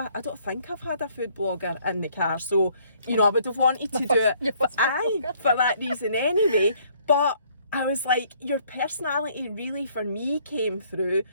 I don't think I've had a food blogger in the car, so you know I would have wanted to do it for that reason anyway. But I was like, your personality really for me came through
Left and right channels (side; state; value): both; inverted; correlation -0.63